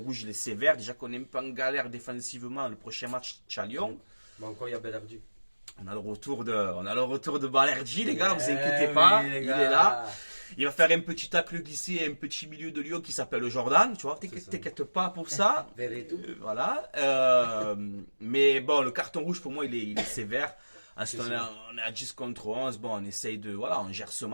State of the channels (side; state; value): both; inverted; correlation -1.00